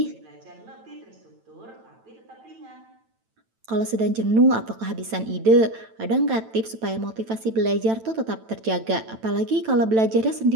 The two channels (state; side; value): late; left; 9.0 ms